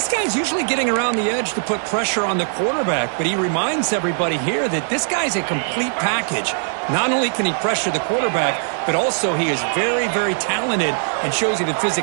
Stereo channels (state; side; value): silent; left; digital silence